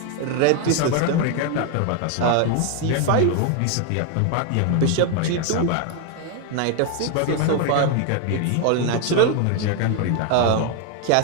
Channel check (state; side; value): different; both; correlation 0.01